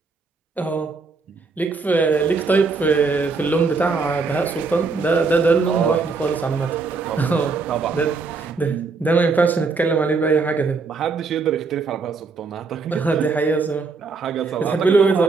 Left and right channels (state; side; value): quieter; left; 4.3 dB